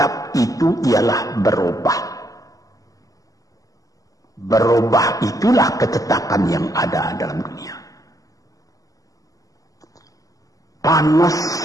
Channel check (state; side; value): late; right; 0.17 ms